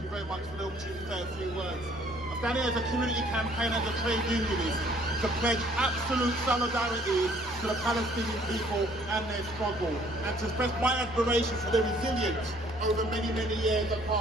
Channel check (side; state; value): both; normal; correlation 0.60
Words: very much for the opportunity to say a few words. I'm standing as a community campaigner, as a trade unionist, to pledge absolute solidarity to the Palestinian people and their struggle, and to express my admiration for their resilience over many, many years of